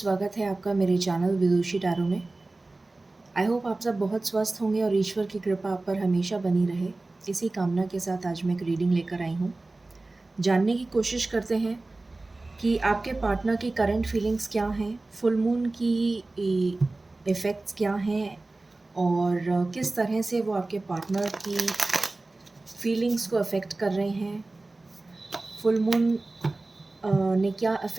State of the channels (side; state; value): left; quieter; 3.1 dB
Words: है आपका मेरे चैनल विदुषी टैरो में। आई होप आप सब बहुत स्वस्थ होंगे और ईश्वर की कृपा आप पर हमेशा बनी रहे। इसी कामना के साथ आज मैं एक रीडिंग लेकर आई हूँ। जानने की कोशिश करते हैं कि आपके पार्टनर की करंट फीलिंग्स क्या हैं, फुल मून की इफ़ेक्ट्स क्या हैं और किस तरह से वो आपके पार्टनर की फीलिंग्स को अफ़ेक्ट कर रहे हैं। फुल मून ने क्या